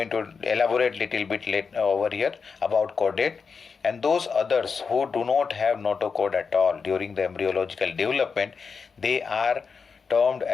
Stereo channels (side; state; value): right; quieter; 5.4 dB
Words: to elaborate little bit later over here about chordate, and those others who do not have notochord at all during the embryological development, they are termed